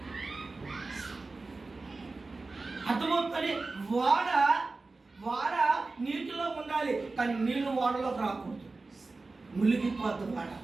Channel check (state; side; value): quieter; left; 3.6 dB